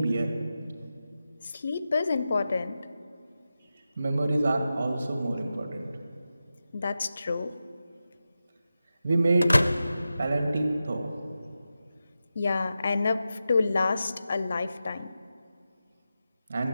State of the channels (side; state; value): both; inverted; correlation -0.92